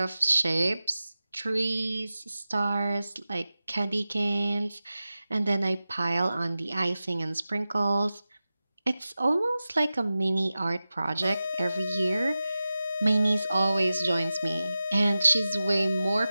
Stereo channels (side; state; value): both; inverted; correlation -0.94